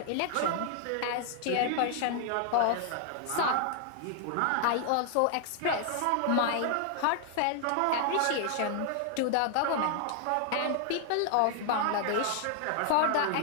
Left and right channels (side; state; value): both; different; correlation 0.00